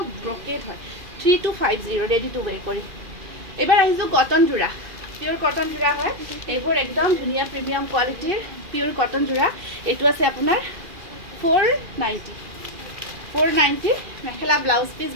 ব্ৰকেট হয়, 3250 ৰেডি টু ৱেৰ কৰি। এইবাৰ আহিছোঁ কটন যোৰা, পিয়ৰ কটন যোৰা হয় এইবোৰ, একদম ধুনীয়া প্ৰিমিয়াম কোৱালিটিৰ পিয়ৰ কটন যোৰা। এইটো আছে আপোনাৰ 490 মেখেলা, ব্লাউজ পিচ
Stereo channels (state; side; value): late; left; 2.4 ms